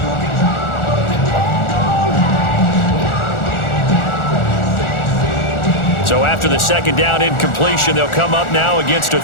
So after the second down incompletion, they'll come up now against a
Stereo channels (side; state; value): right; late; 1.4 ms